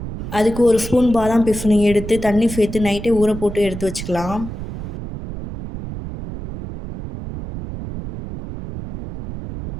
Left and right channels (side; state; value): right; noise; rumble, 9 dB below the sound